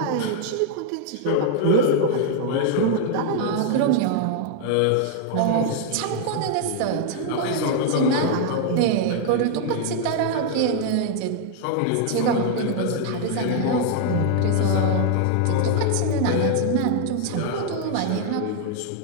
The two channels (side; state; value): both; different; correlation 0.00